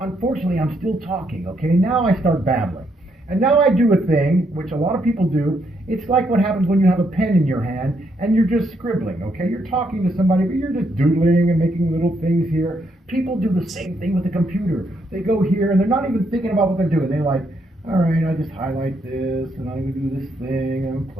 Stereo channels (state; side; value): normal; both; correlation 0.76